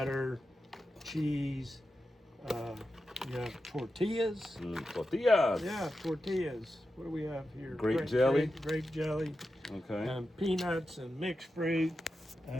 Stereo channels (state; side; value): normal; both; correlation 0.90